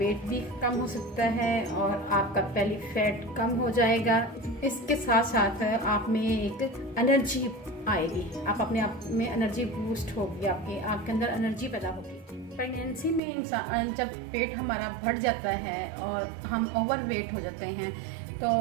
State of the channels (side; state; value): left; drops out; at 13.2 s